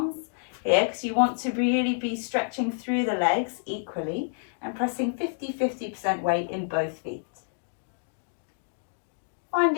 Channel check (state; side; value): silent; right; digital silence